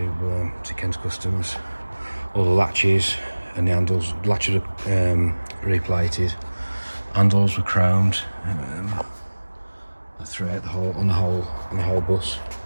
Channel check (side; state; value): both; inverted; correlation -1.00